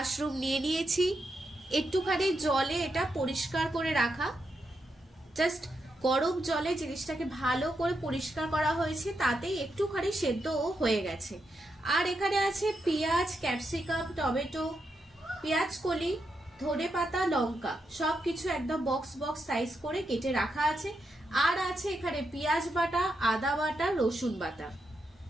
নিয়ে নিয়েছি, একটুখানি জলে এটা পরিষ্কার করে রাখা, জাস্ট গরম জলে জিনিসটাকে ভালো করে পরিষ্কার করা হয়েছে, তাতেই একটুখানি সেদ্ধও হয়ে গেছে। আর এখানে আছে পেঁয়াজ, ক্যাপসিকাম, টমেটো, পেঁয়াজ কলি, ধনেপাতা, লঙ্কা, সবকিছু একদম বক্স বক্স সাইজ করে কেটে রাখা আছে। আর আছে এখানে পেঁয়াজ বাটা, আদা বাটা, রসুন বাটা,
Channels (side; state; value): both; normal; correlation 0.84